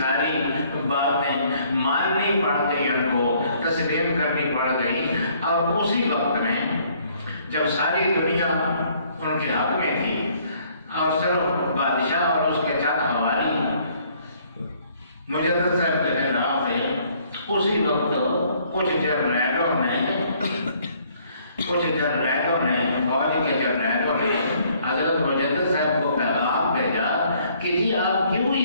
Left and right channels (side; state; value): both; inverted; correlation -0.63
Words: باتیں ماننی پڑ گئی، ان کو تسلیم کرنی پڑ گئی. اور اسی وقت میں جب ساری دنیا ان کے حق میں تھی اور صرف بادشاہ اور اس کے چند حوالی کہ جی آپ کیوں